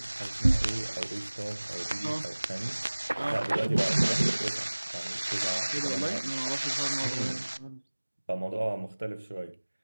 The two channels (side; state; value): both; inverted; correlation -1.00